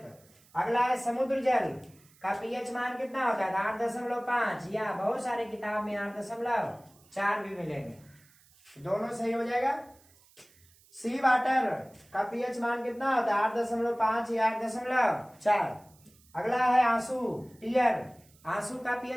अगला है समुद्र जल का पीएच मान कितना होता है? 8.5, या बहुत सारे किताब में 8.4 भी मिलेंगे। दोनों सही हो जाएगा। सी वाटर का पीएच मान कितना होता है? 8.5 या 8.4। अगला है आंसू, टीयर। आंसू का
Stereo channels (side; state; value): right; noise; hiss, 29 dB below the sound